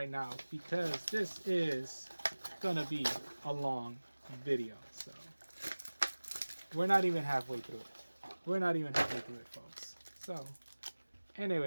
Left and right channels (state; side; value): inverted; both; correlation -1.00